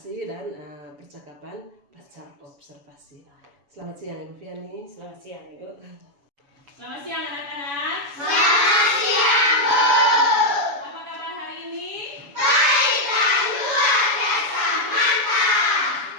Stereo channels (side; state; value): left; late; 7.0 ms